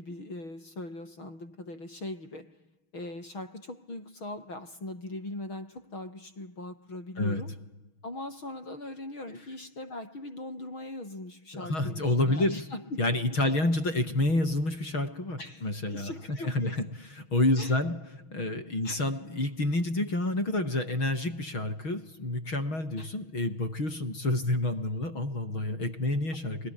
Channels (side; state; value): right; late; 6.3 ms